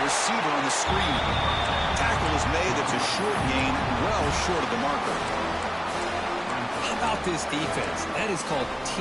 receiver on the screen. Tackle is made. It's a short gain, well short of the marker. How about this defense? That is called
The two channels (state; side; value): identical; both; correlation 1.00